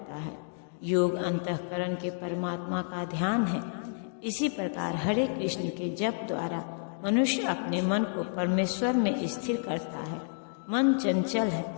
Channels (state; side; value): silent; right; digital silence